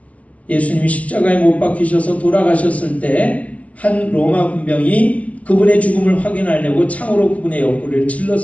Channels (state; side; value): late; right; 0.066 ms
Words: 예수님이 십자가에 못 박히셔서 돌아가셨을 때 한 로마 군병이 그분의 죽음을 확인하려고 창으로 그분의 옆구리를